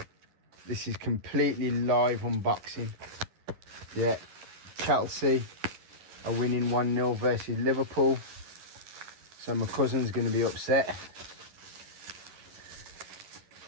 This is completely live unboxing. Yeah, Chelsea are winning 1-0 versus Liverpool. So my cousin's going to be upset.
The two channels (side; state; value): left; late; 11 ms